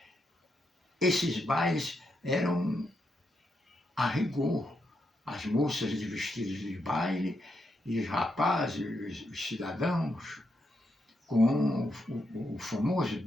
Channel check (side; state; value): both; normal; correlation 0.82